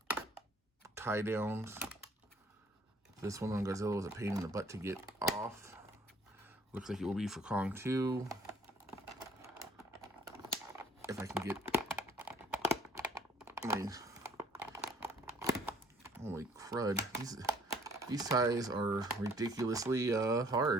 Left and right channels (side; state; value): both; normal; correlation 0.59